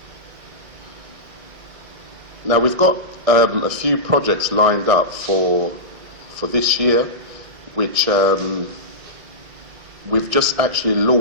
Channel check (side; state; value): left; late; 1.6 ms